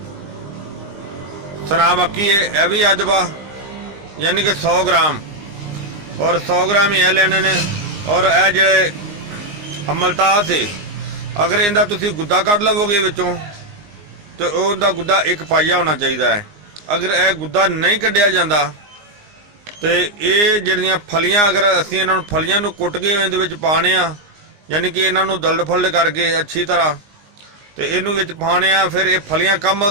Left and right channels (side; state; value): left; late; 19 ms